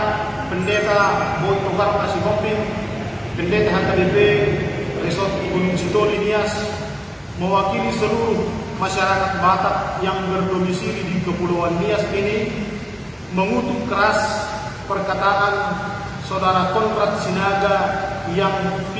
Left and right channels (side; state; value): both; identical; correlation 1.00